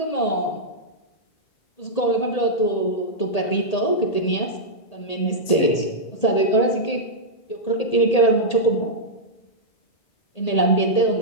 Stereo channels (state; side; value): late; right; 1.8 ms